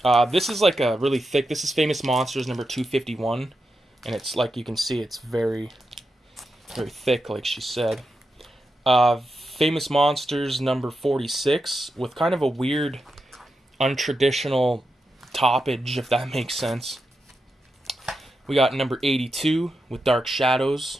This is like a really thick. This is Famous Monsters number 251. And it's like you can see, it's very, very thick, like she said. Famous Monsters number 46 with kind of a weird, untraditional toppage, if that makes sense. We got number 82 with Dark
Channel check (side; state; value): both; normal; correlation 0.87